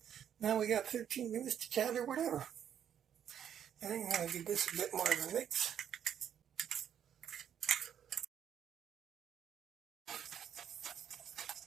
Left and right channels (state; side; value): quieter; left; 9.2 dB